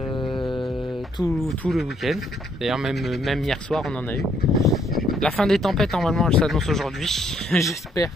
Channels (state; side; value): normal; both; correlation 0.69